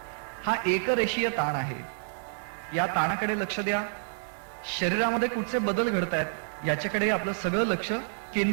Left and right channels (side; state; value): left; silent; 59 dB below the other